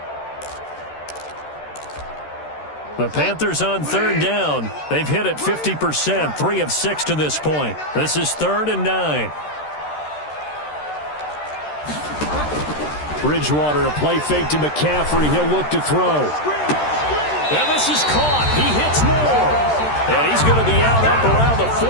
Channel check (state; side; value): late; right; 13 ms